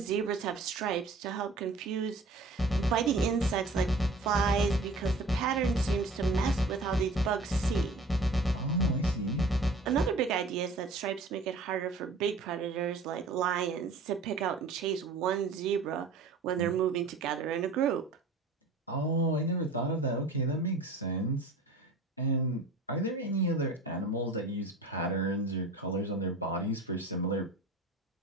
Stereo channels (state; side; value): quieter; left; 3.1 dB